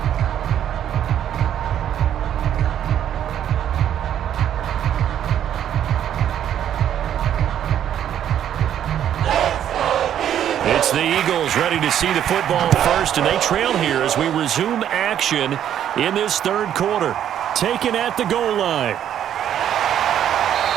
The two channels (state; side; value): quieter; left; 10.2 dB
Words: It's the Eagles ready to see the football first, and they trail here as we resume action in this third quarter. Taken at the goal line.